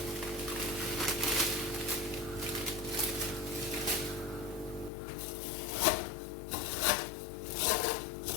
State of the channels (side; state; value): right; drops out; at 4.9 s